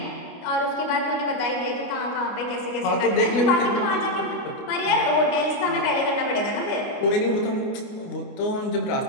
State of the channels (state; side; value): late; right; 29 ms